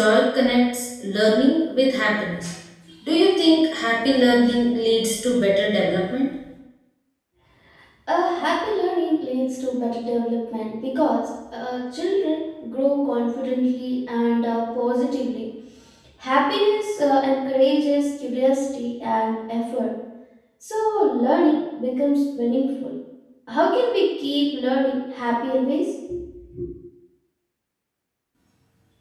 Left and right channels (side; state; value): both; identical; correlation 1.00